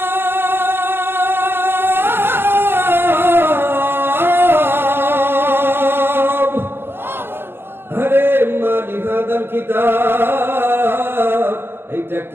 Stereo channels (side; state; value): left; late; 0.11 ms